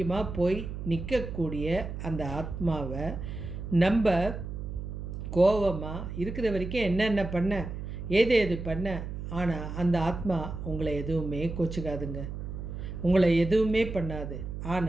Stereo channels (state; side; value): noise; right; hum, 7 dB below the sound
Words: போய் நிற்கக்கூடிய அந்த ஆத்மாவை நம்ம கோபமாக இருக்கிற வரைக்கும் என்னென்ன பண்ண, ஏது பண்ண, ஆனால் அந்த ஆத்மா உங்களை எதுவுமே கோச்சிக்காதுங்க, உங்களை எதுவுமே பண்ணாது.